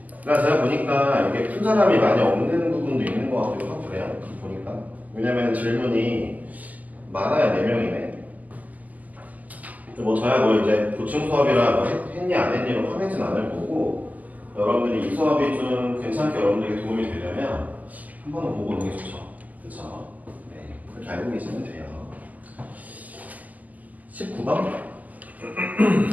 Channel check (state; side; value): late; left; 0.079 ms